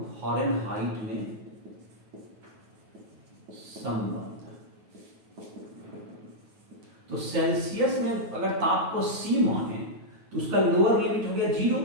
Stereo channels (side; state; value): left; late; 9.3 ms